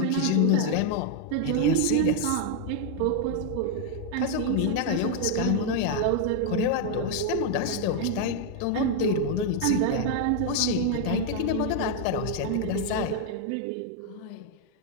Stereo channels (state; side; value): different; both; correlation 0.00